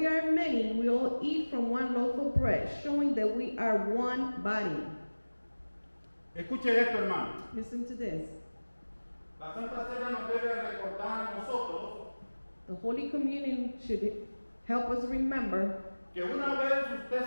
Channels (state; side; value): inverted; both; correlation -1.00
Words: are many, we all eat from one loaf of bread, showing that we are one body. Escuche esto, hermano. Listen to this. La Santa Cena nos debe recordar a nosotros The Holy Communion should help us remember que una vez